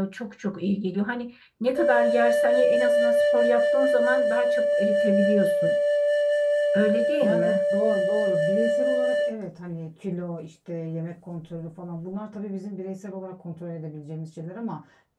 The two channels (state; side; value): identical; both; correlation 1.00